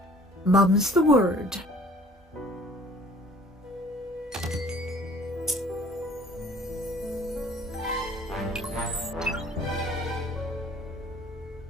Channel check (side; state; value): both; normal; correlation 0.52